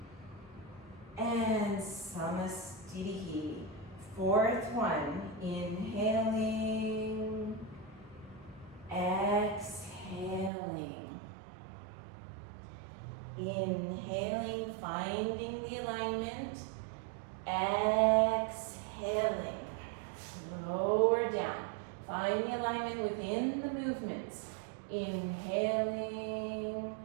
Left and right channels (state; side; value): drops out; left; at 10.5 s